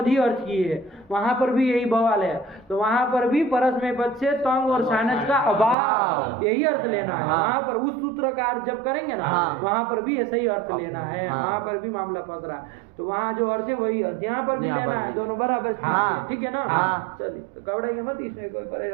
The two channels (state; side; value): drops out; left; at 5.8 s